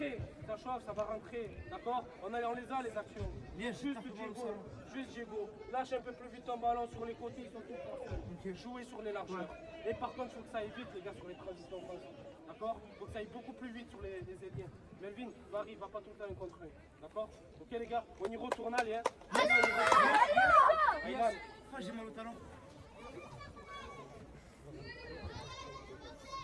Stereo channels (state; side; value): identical; both; correlation 1.00